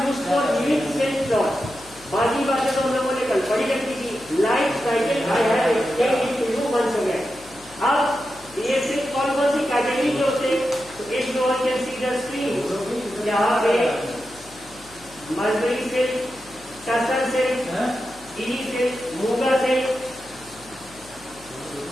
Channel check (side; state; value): left; noise; hum, 24 dB below the sound